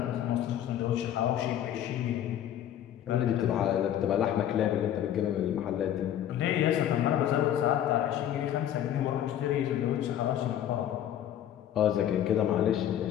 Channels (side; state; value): right; quieter; 10.9 dB